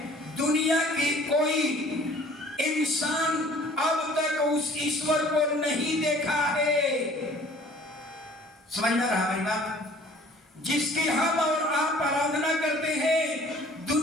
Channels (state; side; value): normal; both; correlation 0.52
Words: दुनिया की कोई इंसान अब तक उस ईश्वर को नहीं देखा है। समझ में रहा मेरी बात? जिसकी हम और आप आराधना करते हैं,